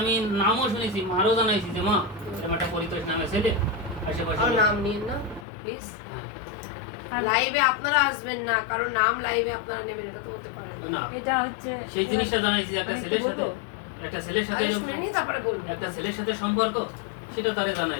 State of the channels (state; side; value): drops out; right; at 5.5 s